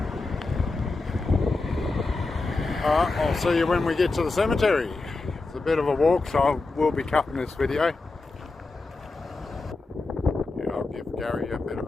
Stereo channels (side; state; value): right; quieter; 3.5 dB